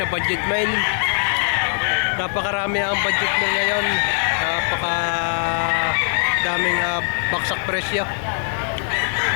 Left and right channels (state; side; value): silent; right; 65 dB below the other